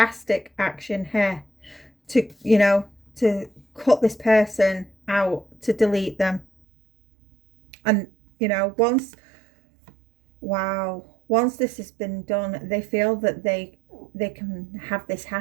to, you know, to cut this person out, to delete them. And, you know, once this has been done, they feel that they can have this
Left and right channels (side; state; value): left; drops out; at 6.5 s